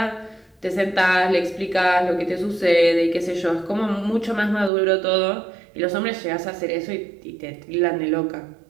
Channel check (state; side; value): drops out; left; at 4.7 s